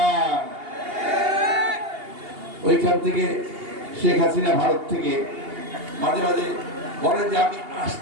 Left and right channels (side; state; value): left; late; 2.8 ms